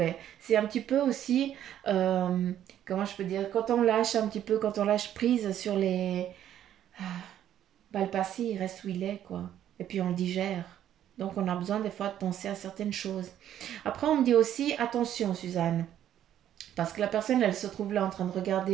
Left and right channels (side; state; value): left; quieter; 11.0 dB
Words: C'est un petit peu aussi, comment je peux dire, quand on lâche un petit peu, quand on lâche prise sur les... Bah, le passé, il reste où il est, quoi. Et puis on le digère. Donc on a besoin des fois de penser à certaines choses. Après, on me dit aussi, attention Suzanne, Parce que la personne, elle se trouve là en train de